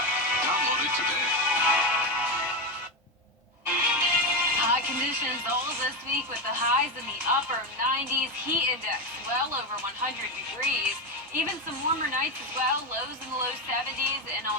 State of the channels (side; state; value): both; normal; correlation 0.13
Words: Download it today. Hot conditions all this week with the highs in the upper 90s, heat index well over 100 degrees. Even some warmer nights as well, lows in the low 70s. And